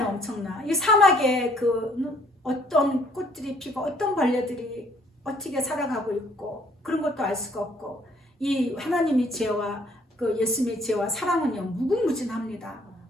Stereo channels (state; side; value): normal; both; correlation 0.62